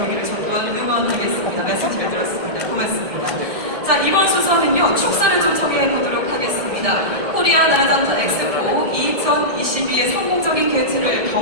저 또한 응원하겠습니다. 말씀 잘 들었습니다. 고맙습니다. 자, 이번 순서는요, 축사를 좀 정해보도록 하겠습니다. 코리아 나라장터 엑스포 2022의 성공적인 개최를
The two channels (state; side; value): late; left; 1.7 ms